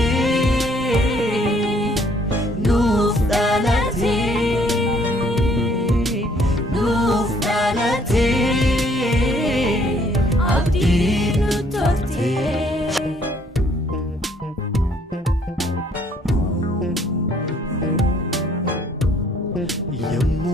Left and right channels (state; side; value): normal; both; correlation 0.63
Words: nuuf dhalate nuuf dhalate abdiin nu torte